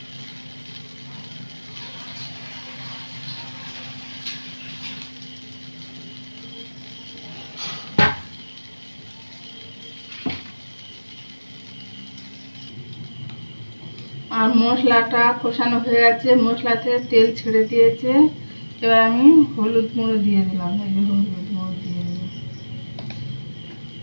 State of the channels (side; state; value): both; inverted; correlation -1.00